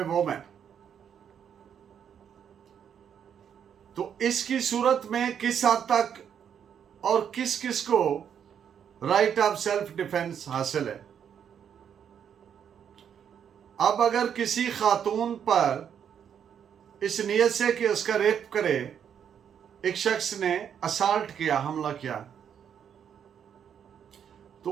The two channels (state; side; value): quieter; left; 8.3 dB